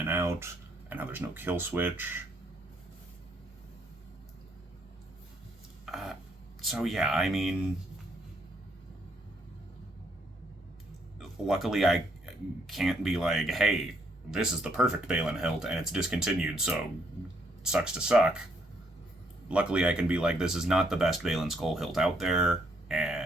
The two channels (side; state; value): both; normal; correlation 0.71